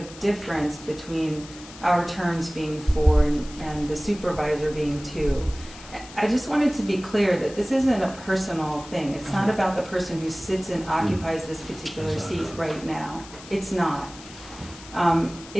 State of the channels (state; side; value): noise; left; hiss, 17 dB below the sound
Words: difference between our terms being 4 and the supervisor being 2. I just wanted to be clear that this isn't a personal thing. It's not about the person who sits and occupies this particular seat right now. It's not.